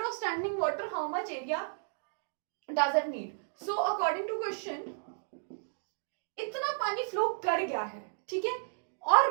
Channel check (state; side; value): silent; left; digital silence